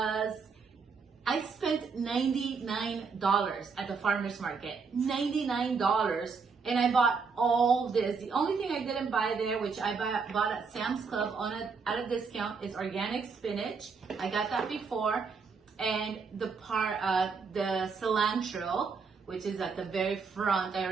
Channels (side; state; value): left; quieter; 5.2 dB